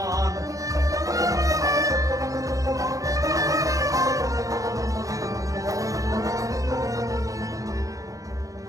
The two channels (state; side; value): late; left; 0.16 ms